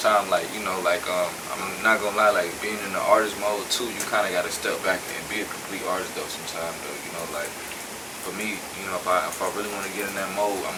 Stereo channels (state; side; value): identical; both; correlation 1.00